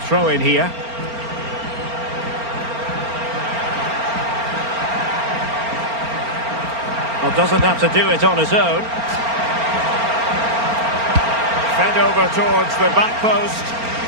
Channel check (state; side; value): late; left; 4.4 ms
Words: Throw in here. Well, doesn't have to do it on his own. Fed over towards the back post.